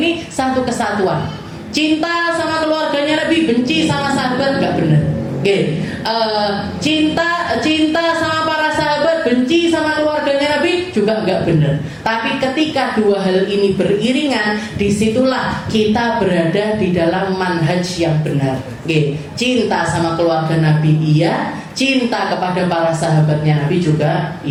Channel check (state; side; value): identical; both; correlation 1.00